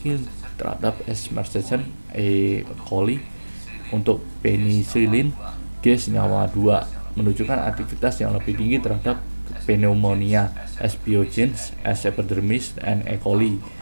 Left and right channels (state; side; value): inverted; both; correlation -1.00